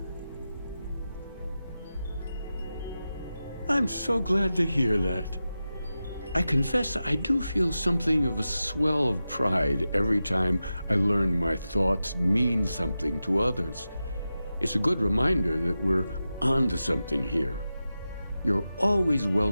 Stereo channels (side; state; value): both; inverted; correlation -0.92